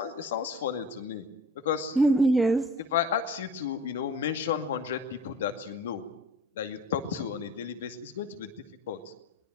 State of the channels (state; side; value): normal; both; correlation 0.42